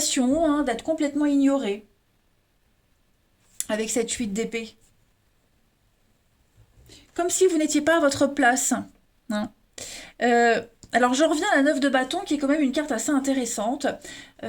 hein, d'être complètement ignoré avec cette 8 d'épée. Comme si vous n'étiez pas à votre place. Hein. Euh, alors je reviens à la 9 de bâton qui est quand même une carte assez intéressante.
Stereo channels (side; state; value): both; identical; correlation 1.00